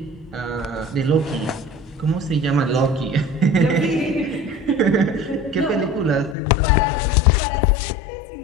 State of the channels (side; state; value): right; drops out; at 6.4 s